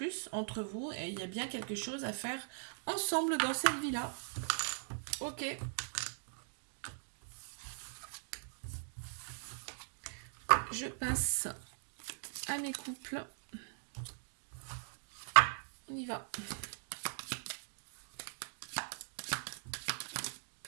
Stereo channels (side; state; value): left; silent; digital silence